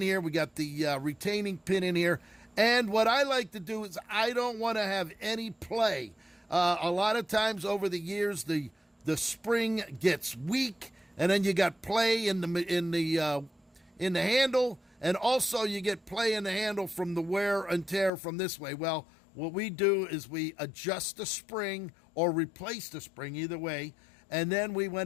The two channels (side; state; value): right; drops out; at 18.1 s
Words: here. We got the retaining pin in here. And what I like to do is I don't want to have any play. A lot of times over the years, the spring gets weak, and then you got play in the handle, and also you get play in the handle from the wear and tear from this way. Well, what we do is we adjust the spring or replace the spring, either way, and then